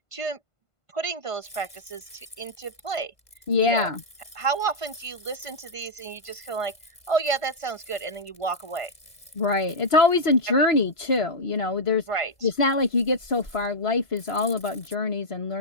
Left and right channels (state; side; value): late; right; 1.5 ms